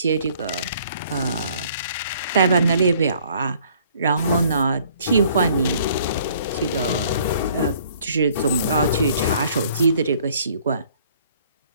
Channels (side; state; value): both; inverted; correlation -0.59